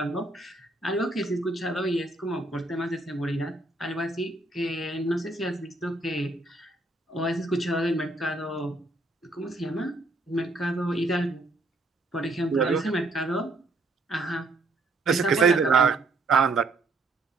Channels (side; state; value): left; quieter; 3.1 dB